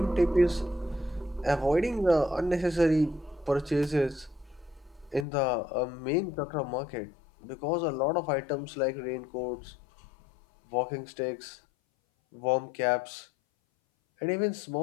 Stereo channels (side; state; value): right; drops out; at 5.2 s